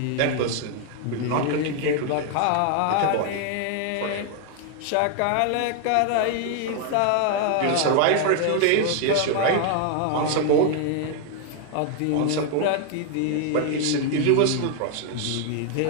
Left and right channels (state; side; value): different; both; correlation 0.00